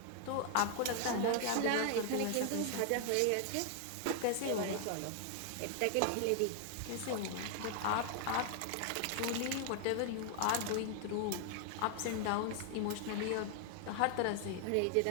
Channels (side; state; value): both; different; correlation 0.00